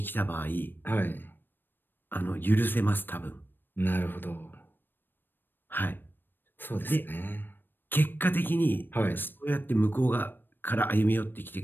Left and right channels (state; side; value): late; right; 0.095 ms